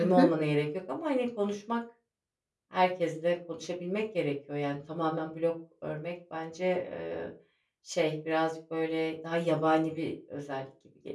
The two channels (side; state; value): both; identical; correlation 1.00